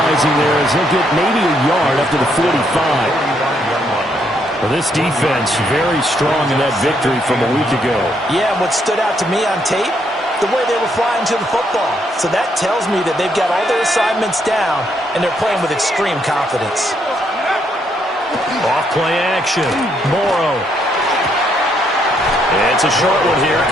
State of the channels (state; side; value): normal; both; correlation 0.73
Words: there as they'll get maybe a yard up to the 45. Well, this defense very strong in that victory from a week ago. Yeah, and what stood out to me on tape, the way they were flying to the football. So that tells me that they've got all their assignments down, and they're playing with extreme confidence. Off play action. Morrow. It's a short one here,